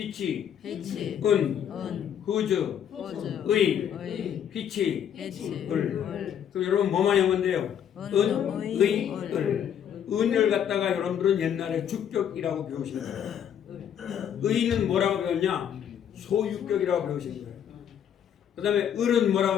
whose, 의, which, 을. 그럼 여러분 뭐만 하면 돼요? 의, 을. 은을 갖다가 여러분들은 옛날에 주격이라고 배우신 거예요. 의는 뭐라고 배웠냐? 소유격이라고 배우신 거예요. 그 다음에 을은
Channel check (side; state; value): right; quieter; 9.1 dB